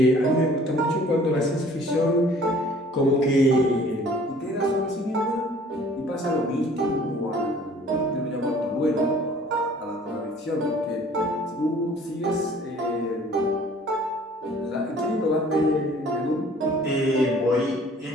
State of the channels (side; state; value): both; normal; correlation 0.53